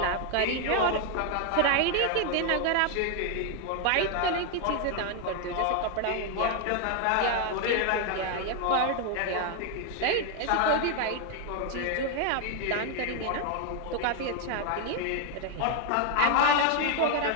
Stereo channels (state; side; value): different; both; correlation 0.01